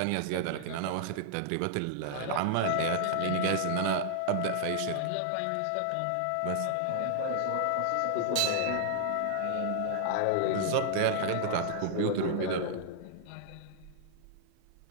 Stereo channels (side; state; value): both; different; correlation -0.01